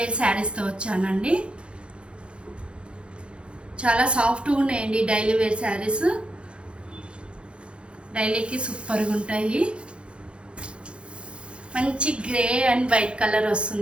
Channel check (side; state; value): left; late; 0.057 ms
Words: శారీస్తో వచ్చానండి. చాలా సాఫ్ట్గా ఉన్నాయండి డైలీ వేర్ శారీస్. డైలీకి సూపర్గా ఉంటాయి. మంచి గ్రే అండ్ వైట్ కలర్